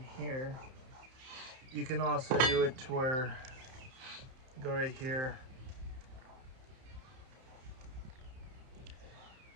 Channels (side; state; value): left; late; 31 ms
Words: here. You can also do it to where, go right here,